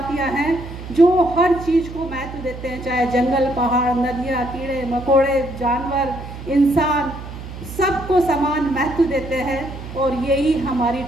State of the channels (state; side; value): noise; right; hum, 11 dB below the sound